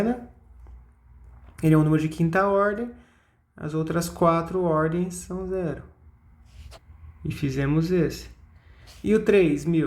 ele é um número de quinta ordem, as outras 4 ordens são zero. E fizemos esse. E o 3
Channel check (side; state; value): both; identical; correlation 1.00